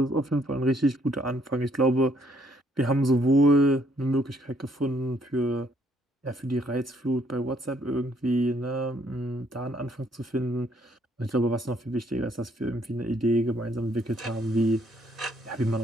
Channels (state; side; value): normal; both; correlation 0.68